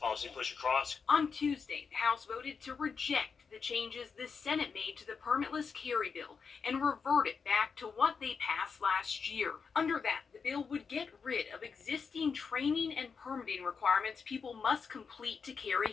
pushed across. On Tuesday, the House voted to reject the changes the Senate made to the permitless carry bill and revert it back to what they passed last year. Under that, the bill would get rid of existing training and permitting requirements people must complete to carry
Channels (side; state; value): right; quieter; 5.6 dB